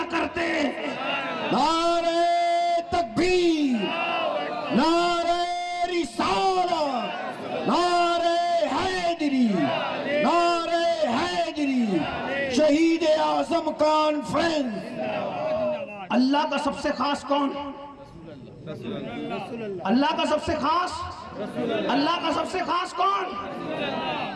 کرتے۔ نعرہ تکبیر، نعرہ رسالت، نعرہ حیدری، نعرہ حیدری، شہید اعظم کانفرنس۔ اللہ کا سب سے خاص کون؟ اللہ کا سب سے خاص، اللہ کا سب سے خاص کون؟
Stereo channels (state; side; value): identical; both; correlation 1.00